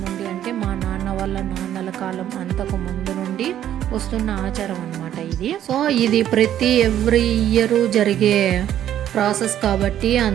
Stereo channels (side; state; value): left; quieter; 11.2 dB